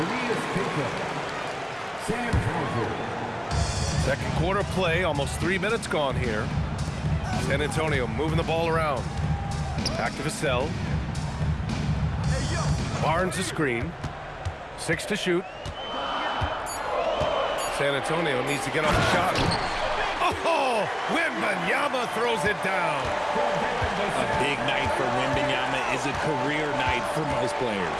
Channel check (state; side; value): identical; both; correlation 1.00